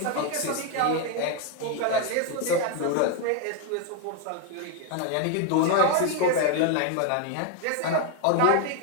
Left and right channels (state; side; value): different; both; correlation 0.01